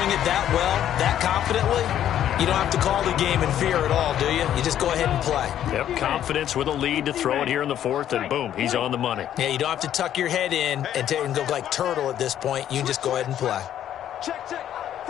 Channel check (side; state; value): right; quieter; 10.9 dB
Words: it that well, that confidently, you don't have to call the game in fear at all, do you? You just go ahead and play. Yep, confidence with a lead to throw it here in the fourth, and boom, he's on the money. Yeah, you don't have to tuck your head in and go like turtle at this point. You can just go ahead and play. Check, check.